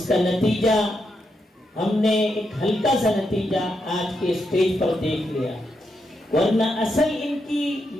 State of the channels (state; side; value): normal; both; correlation 0.83